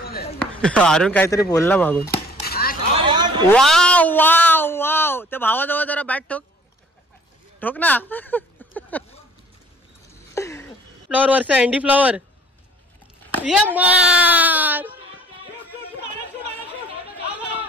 अरुण काहीतरी बोलला मागून. Wow wow wow. त्या भावाजवळ जरा बॅट ठोक ना. फ्लॉवर वरचा अँडी फ्लॉवर. ये मार.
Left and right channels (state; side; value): normal; both; correlation 0.54